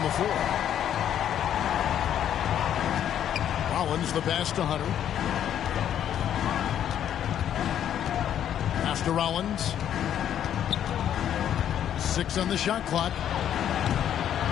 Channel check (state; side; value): quieter; right; 10.1 dB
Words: the floor. Rollins the pass to Hunter. Pass to Rollins. 6 on the shot clock.